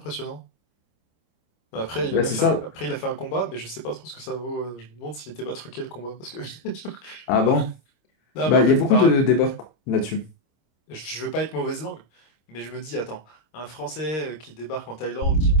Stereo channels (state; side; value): late; right; 26 ms